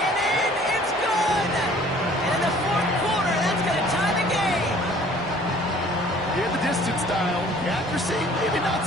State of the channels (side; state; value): both; normal; correlation 0.53